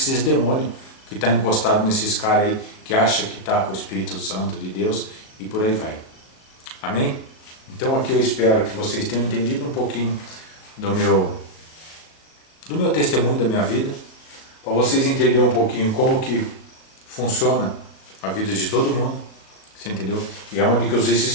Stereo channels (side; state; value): right; late; 37 ms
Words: demônios que está encostado nesses caras aí, que acha que está com o Espírito Santo de Deus, e por aí vai. Amém? Então aqui eu espero que vocês tenham entendido um pouquinho do meu testemunho, da minha vida, para vocês entenderem um pouquinho como que funciona a vida de todo mundo, você entendeu? E é onde que os